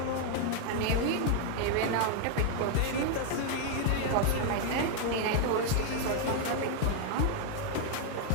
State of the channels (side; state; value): both; different; correlation 0.00